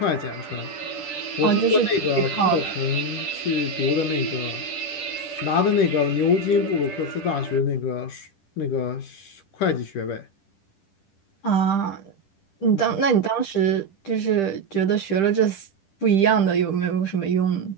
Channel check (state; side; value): late; right; 10 ms